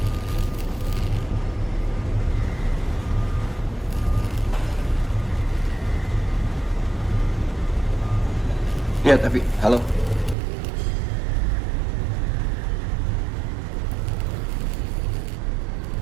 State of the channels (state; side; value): drops out; left; at 10.4 s